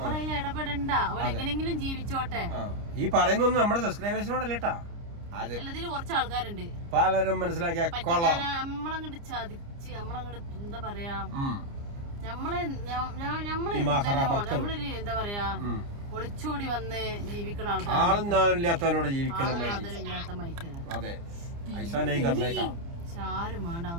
ഇടപെടണ്ട. അവരെങ്ങനെങ്കിലും ജീവിച്ചോട്ടെ. ഈ പറയുന്നൊന്നും നമ്മുടെ സബ്സ്ക്രൈബേഴ്സിനോടല്ലേട്ടാ, എല്ലാത്തിലും കുറച്ച് ആൾക്കാരുണ്ട് പലരും മനസ്സിലാക്കിയ നമ്മളങ്ങോട്ട് ചതിച്ച് നമ്മളങ്ങോട്ട് എന്താ പറയാ, നമ്മളൊരു എന്താ പറയാ ഒളിച്ചോടി വന്ന് ജീവിക്കുന്ന ആൾക്കാരില്ലാത്തവരോട് ജീവിക്കണം. അതെ, ആരും വേണ്ട,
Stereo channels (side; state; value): left; late; 29 ms